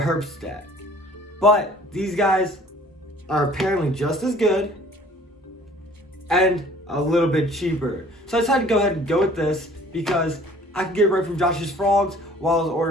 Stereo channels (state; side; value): normal; both; correlation 0.52